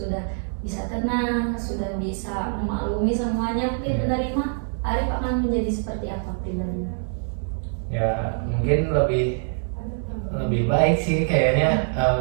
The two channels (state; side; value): silent; left; 62 dB below the other